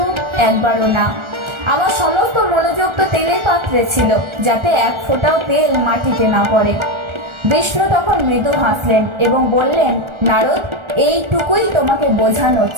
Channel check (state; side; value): late; left; 1.4 ms